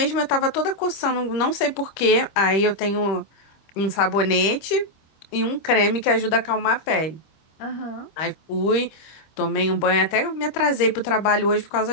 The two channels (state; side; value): late; right; 25 ms